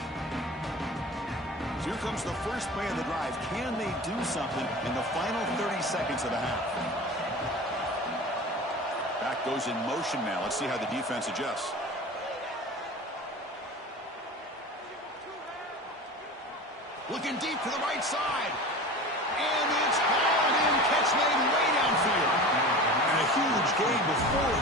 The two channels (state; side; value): normal; both; correlation 0.34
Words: So here comes the first play of the drive. Can they do something in the final 30 seconds of the half? Back goes in motion now. Let's see how the defense adjusts. Looking deep to the right side. And it's hauled in. Catch made way downfield. And a huge gain before